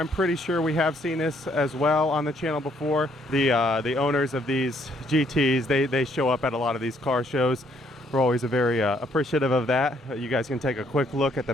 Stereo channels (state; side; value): normal; both; correlation 0.68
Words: pretty sure we have seen this as well on the channel before. The owners of these GTs, they show up at a lot of these car shows. We're always very appreciative of that. You guys can take a quick look at the